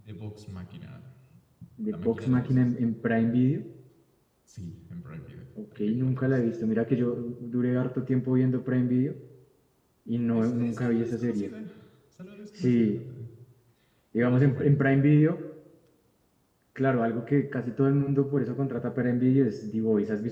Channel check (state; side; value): identical; both; correlation 1.00